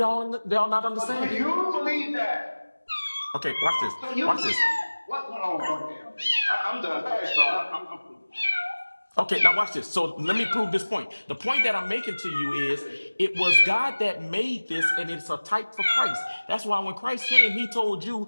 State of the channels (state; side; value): inverted; both; correlation -1.00